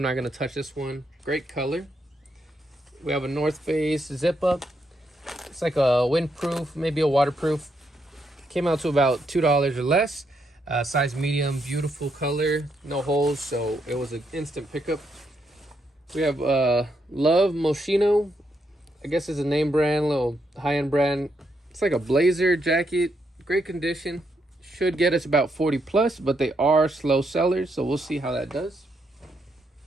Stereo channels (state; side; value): normal; both; correlation 0.78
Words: not gonna touch this one. Great color. We have a North Face zip up. It's like a windproof, maybe a waterproof. Came out to about $2 or less. Size medium, beautiful color, no holes, so it was an instant pickup. We have Love Moschino. I guess it's a name brand, little high-end brand. It's like a blazer jacket, great condition. Should get us about 40 plus, but they are slow sellers, so we'll see how that does.